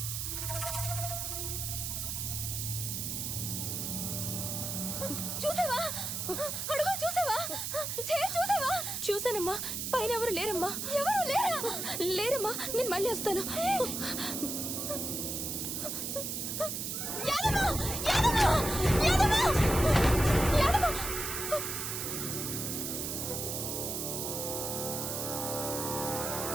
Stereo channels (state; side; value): noise; right; hiss, 3 dB below the sound